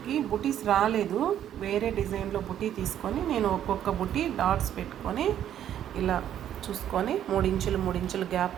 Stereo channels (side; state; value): left; quieter; 10.6 dB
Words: ఈ బుటీస్ రాలేదు, వేరే డిజైన్లో బుటీ తీసుకొని నేను ఒక్కొక్క బుటీ డాట్స్ పెట్టుకొని ఇలా చూసుకొని 3 ఇంచులు